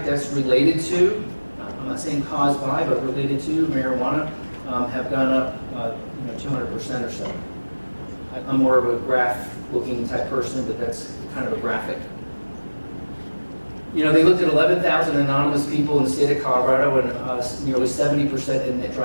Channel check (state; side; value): inverted; both; correlation -1.00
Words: deaths related to I'm not saying caused by, but related to marijuana, have gone up 200% or so. I'm more of a graph-looking type person, but that's kind of a graphic. They looked at 11,000 anonymous people in the state of Colorado, and nearly 70% admit